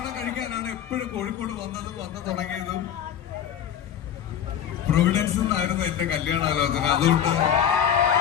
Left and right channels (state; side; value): quieter; right; 9.2 dB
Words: കഴിക്കാനാണ്. എപ്പോഴും കോഴിക്കോട് വന്നു തുടങ്ങിയതും പ്രൊവിഡൻസ് എന്നായിരുന്നു എന്റെ കല്യാണാലോചന. അതുകൊണ്ട്